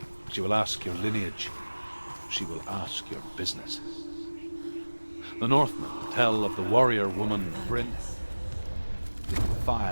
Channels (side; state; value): both; inverted; correlation -1.00